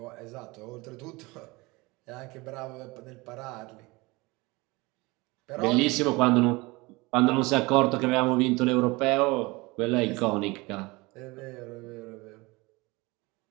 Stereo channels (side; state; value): left; quieter; 23.7 dB